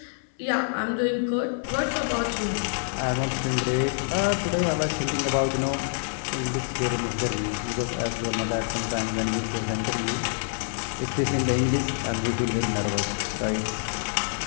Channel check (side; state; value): right; silent; 58 dB below the other